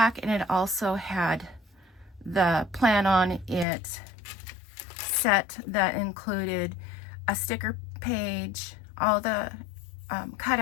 and it also had the Plan On It set that included a sticker page, all the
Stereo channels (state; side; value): drops out; right; at 3.7 s